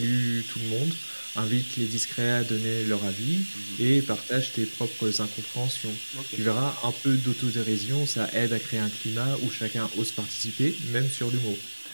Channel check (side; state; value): both; inverted; correlation -1.00